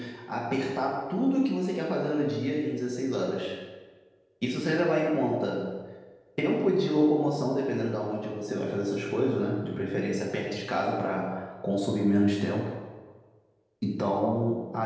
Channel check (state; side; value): identical; both; correlation 1.00